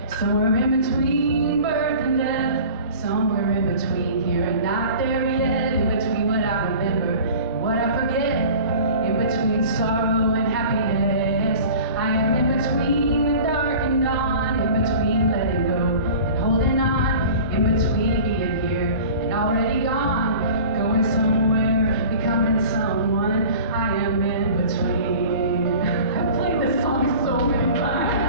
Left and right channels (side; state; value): both; inverted; correlation -0.41